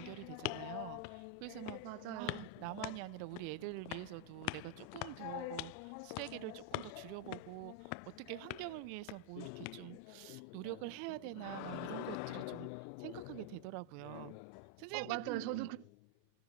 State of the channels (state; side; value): different; both; correlation 0.00